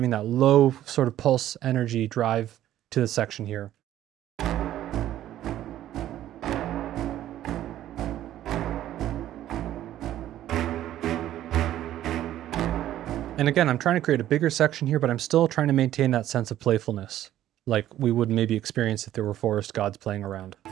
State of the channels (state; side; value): quieter; left; 12.7 dB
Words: that low sort of pulse energy drive to the section here. And again, I'm trying to create a bigger section here, but I'm still trying to maintain that sense of playfulness, like we would maybe experience if there were forest gods playing around.